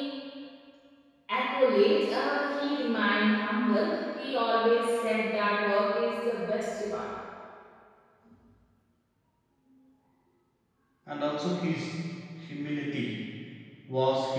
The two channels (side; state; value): both; identical; correlation 1.00